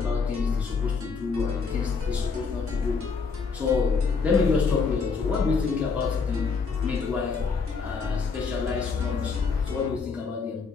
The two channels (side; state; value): right; quieter; 5.0 dB